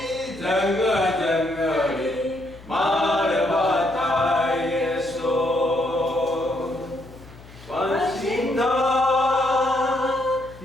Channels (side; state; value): left; noise; hum, 20 dB below the sound